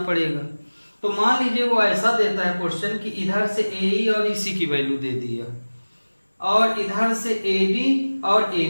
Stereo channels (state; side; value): inverted; both; correlation -1.00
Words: तो मान लीजिए वो ऐसा देता है क्वेश्चन कि इधर से AE और EC की वैल्यू दे दिया, और इधर से AD और